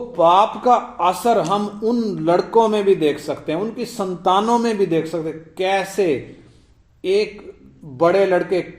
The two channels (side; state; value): both; identical; correlation 1.00